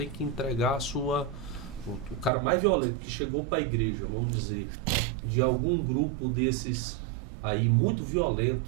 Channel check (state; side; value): drops out; left; at 2.3 s